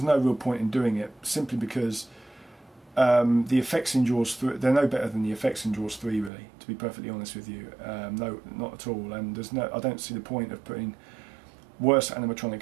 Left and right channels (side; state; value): left; drops out; at 6.3 s